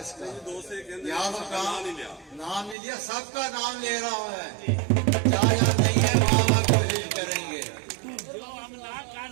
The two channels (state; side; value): drops out; left; at 2.8 s